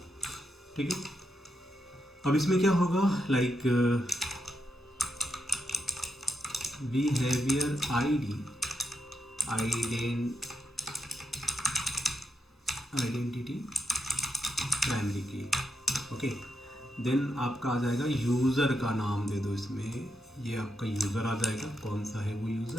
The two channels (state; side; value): normal; both; correlation 0.83